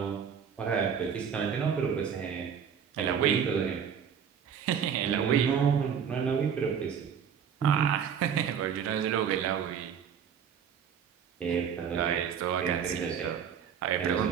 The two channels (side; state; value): left; quieter; 7.7 dB